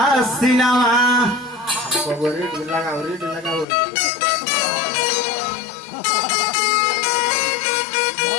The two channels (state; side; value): drops out; right; at 3.7 s